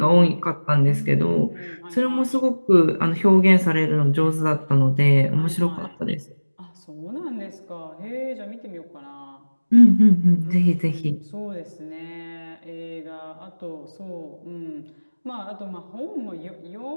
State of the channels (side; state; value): both; inverted; correlation -1.00